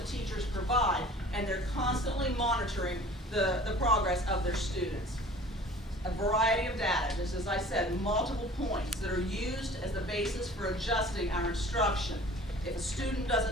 teachers provide, and they're constantly monitoring the progress of their students. A variety of data, just as I said, multiple points that are used as the basis for adjusting our instruction. If a student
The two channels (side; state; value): both; normal; correlation 0.46